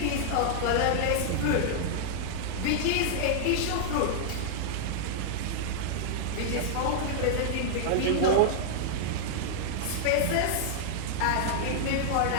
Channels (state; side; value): different; both; correlation -0.01